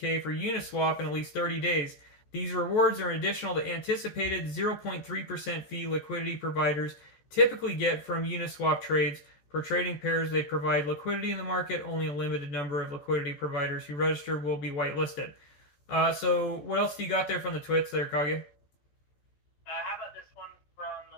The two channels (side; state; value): right; late; 14 ms